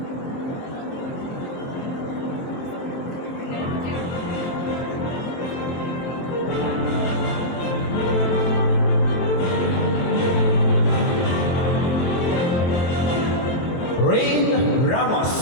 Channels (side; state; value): right; late; 23 ms